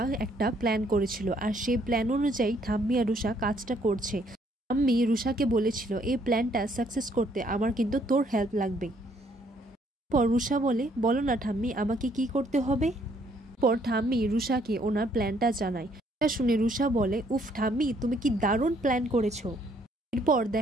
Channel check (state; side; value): normal; both; correlation 0.67